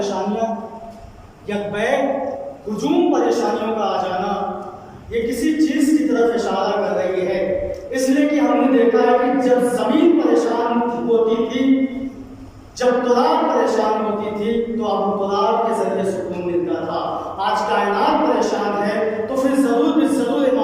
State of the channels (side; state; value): both; identical; correlation 1.00